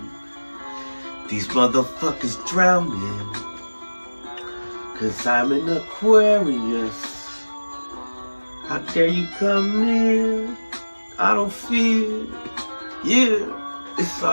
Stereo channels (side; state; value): both; inverted; correlation -1.00